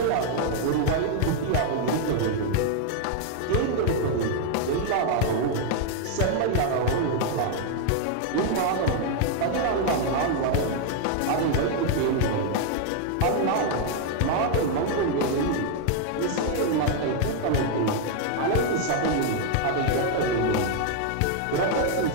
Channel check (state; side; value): different; both; correlation 0.00